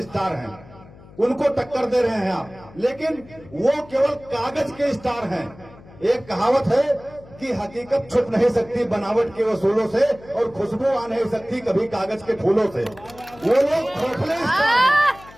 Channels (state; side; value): noise; left; hum, 21 dB below the sound